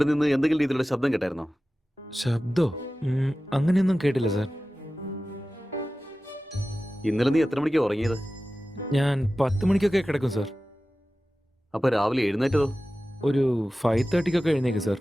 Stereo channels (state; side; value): normal; both; correlation 0.95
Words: നിന്ന് എന്തെങ്കിലും രീതിയിലുള്ള ശബ്ദം കേട്ടായിരുന്നോ? ശബ്ദോ? അങ്ങനെയൊന്നും കേട്ടില്ല സർ. ഇന്നലെ നീ എത്ര മണിക്കാണ് ഉറങ്ങിയത്? ഞാൻ 10 മണിക്കൊക്കെ കിടക്കും സർ. അപ്പൊ രാവിലെ എഴുന്നേറ്റതോ? ഒരു 5:30 എഴുന്നേക്കും സർ.